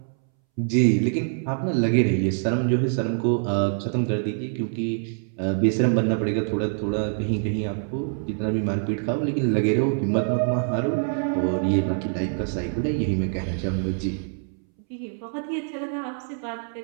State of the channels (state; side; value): silent; left; 62 dB below the other